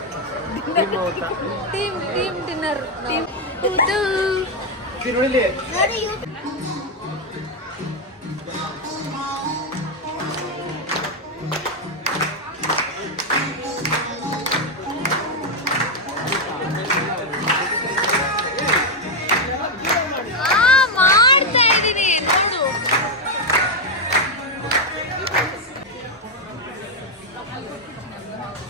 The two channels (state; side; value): normal; both; correlation 0.04